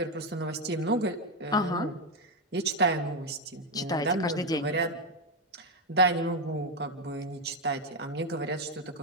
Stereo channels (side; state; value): both; normal; correlation 0.07